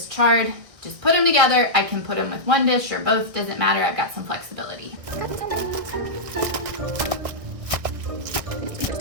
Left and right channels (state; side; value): late; left; 1.6 ms